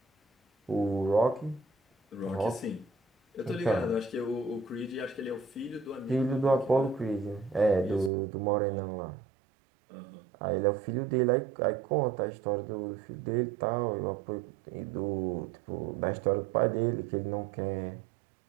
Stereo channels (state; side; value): drops out; left; at 8.1 s